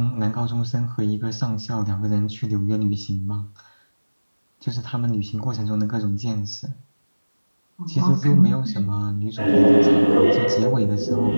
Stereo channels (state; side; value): inverted; both; correlation -1.00